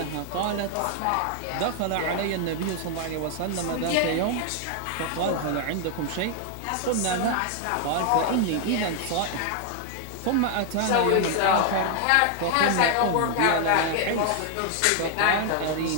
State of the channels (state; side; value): different; both; correlation 0.00